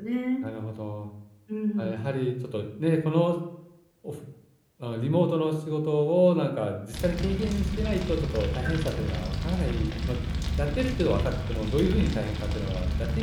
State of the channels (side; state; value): both; identical; correlation 1.00